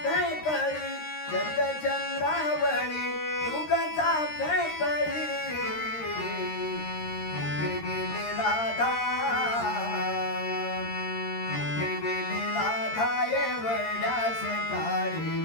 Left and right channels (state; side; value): late; right; 13 ms